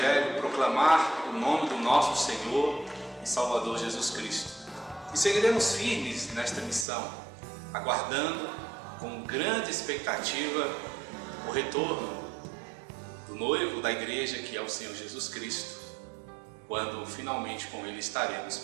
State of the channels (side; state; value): left; drops out; at 6.9 s